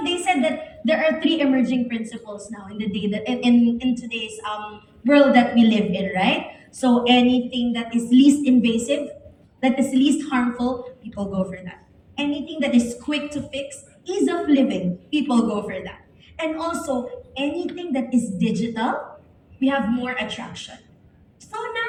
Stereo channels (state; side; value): identical; both; correlation 1.00